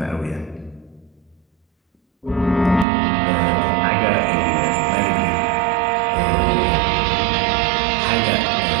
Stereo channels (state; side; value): drops out; left; at 2.9 s